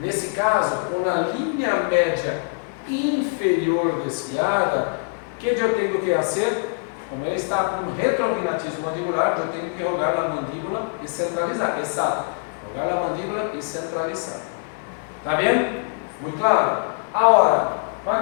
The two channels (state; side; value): silent; right; digital silence